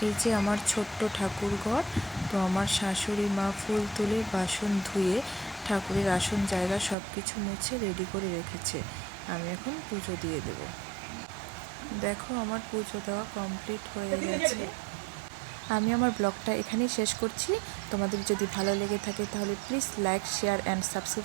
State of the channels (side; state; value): left; drops out; at 7.0 s